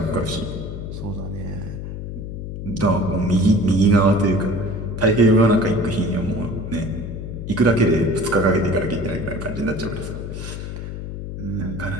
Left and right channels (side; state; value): left; noise; hum, 7 dB below the sound